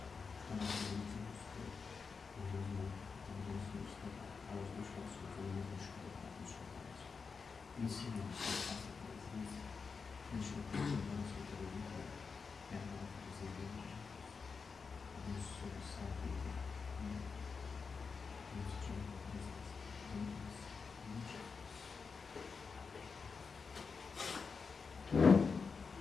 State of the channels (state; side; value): quieter; right; 5.1 dB